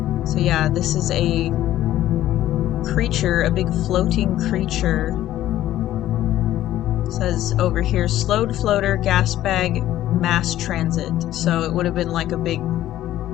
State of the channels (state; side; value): quieter; right; 13.5 dB